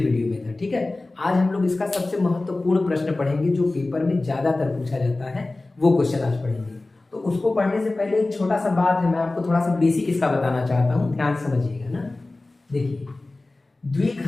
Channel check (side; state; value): right; quieter; 3.1 dB